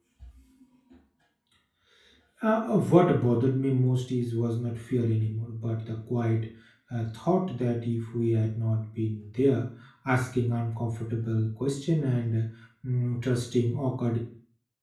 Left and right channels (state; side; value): identical; both; correlation 1.00